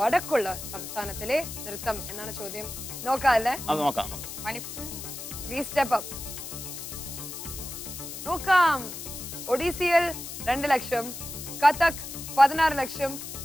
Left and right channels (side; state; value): left; noise; hiss, 9 dB below the sound